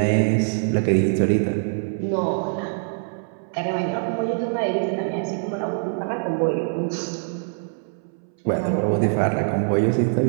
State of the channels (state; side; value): silent; left; 62 dB below the other